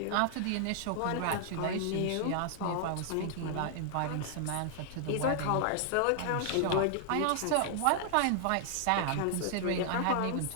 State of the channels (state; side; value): different; both; correlation 0.00